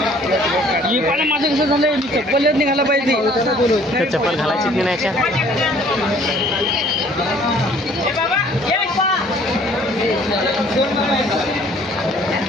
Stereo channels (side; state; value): both; normal; correlation 0.56